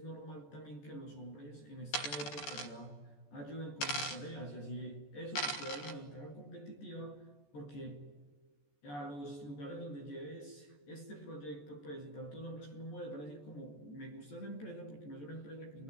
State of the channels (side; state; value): right; late; 14 ms